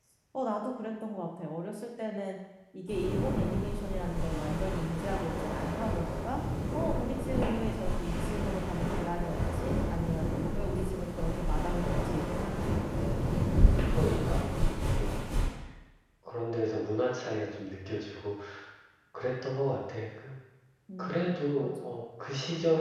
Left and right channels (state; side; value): identical; both; correlation 1.00